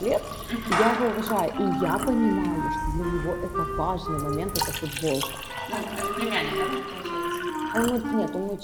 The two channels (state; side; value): identical; both; correlation 1.00